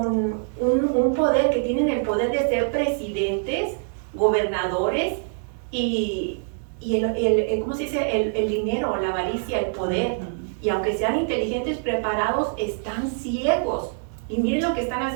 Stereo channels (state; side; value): silent; left; 62 dB below the other